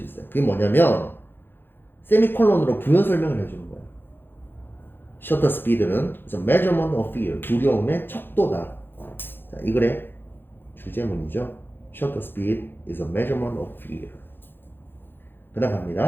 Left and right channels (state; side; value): late; right; 0.10 ms